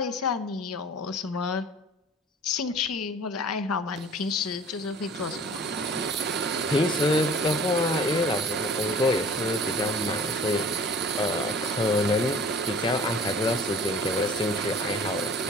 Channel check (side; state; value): both; normal; correlation 0.46